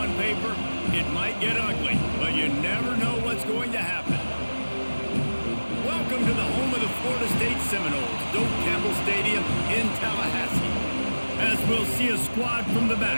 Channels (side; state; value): both; inverted; correlation -1.00